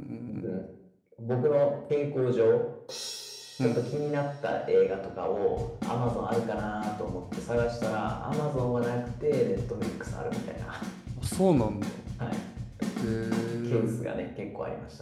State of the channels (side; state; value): both; identical; correlation 1.00